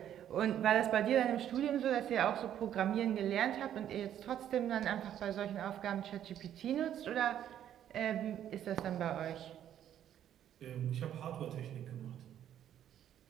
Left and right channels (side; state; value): left; quieter; 10.5 dB